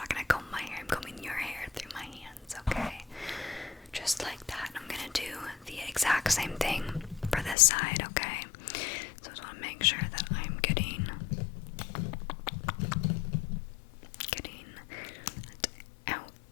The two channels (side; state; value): right; drops out; at 7.6 s